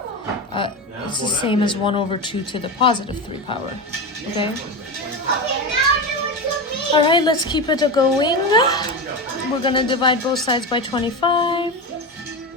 It's the same as 1/2 to the +3 power. Okay? Alright, let's keep it going. We're gonna divide both sides by 25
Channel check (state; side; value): normal; both; correlation 0.20